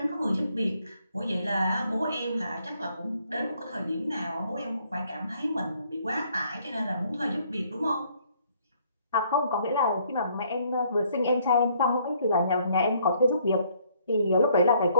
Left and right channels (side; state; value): both; inverted; correlation -0.66